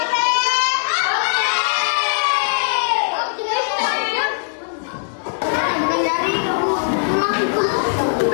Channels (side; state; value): right; silent; digital silence